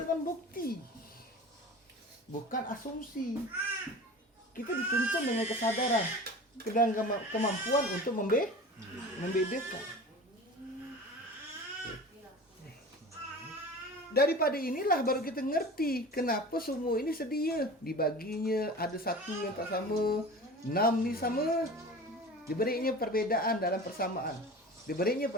bukti, bukan asumsi. Kita dituntun dengan kesadaran, dengan kemampuan untuk Membedakan. Daripada inilah baru kita ngerti kenapa semua ini sedia. Dibaginya ada satu yang tak sama, 6 ni sama. Diberinya perbedaan dalam persamaan. Diberinya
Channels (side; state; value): both; normal; correlation 0.36